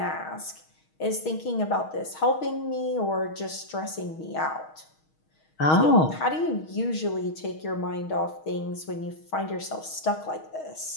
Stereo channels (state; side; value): late; right; 6.4 ms